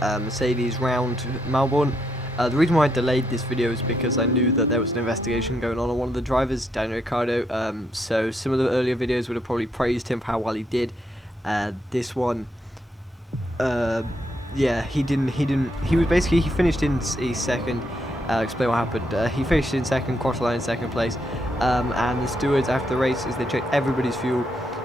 Mercedes round Melbourne. The reason why I delayed this video is because I knew that there was an investigation going on one of the drivers, Daniel Ricciardo. So some of the earlier videos would have probably praised him for how well he did. This one, yeah, he didn't. He was basically, he finished in second. Explain what happened. He finished in second, crossed the line in second place, and the stewards after the race is they check everybody's fuel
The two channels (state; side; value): normal; both; correlation 0.78